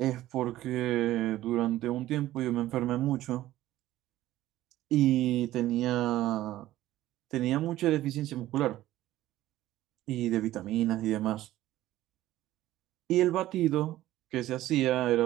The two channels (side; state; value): left; quieter; 14.9 dB